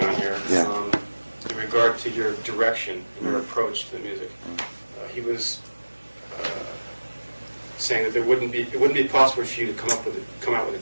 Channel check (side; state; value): both; inverted; correlation -1.00